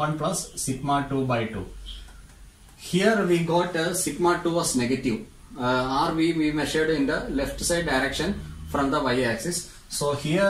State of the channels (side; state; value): both; identical; correlation 1.00